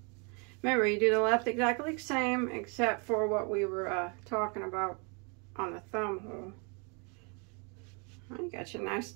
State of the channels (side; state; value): left; quieter; 34.6 dB